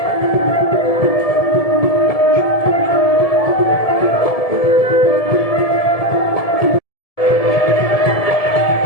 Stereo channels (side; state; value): right; late; 1.7 ms